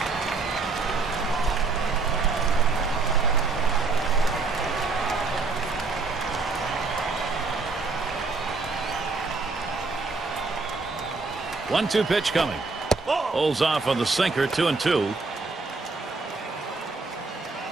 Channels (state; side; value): quieter; left; 4.1 dB